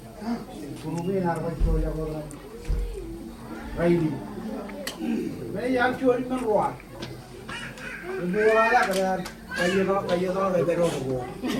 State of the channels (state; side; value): identical; both; correlation 1.00